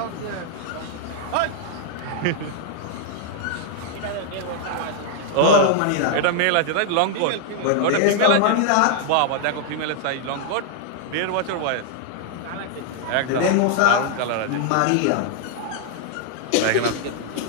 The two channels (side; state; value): both; different; correlation 0.00